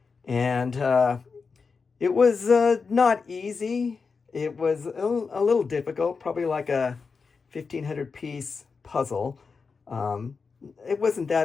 and it was not easy. It was a little difficult, probably like a 1,500 piece puzzle. Um, it wasn't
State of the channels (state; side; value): quieter; right; 5.0 dB